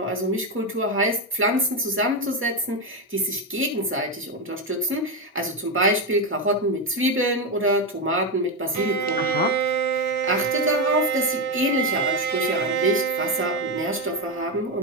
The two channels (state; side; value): normal; both; correlation 0.10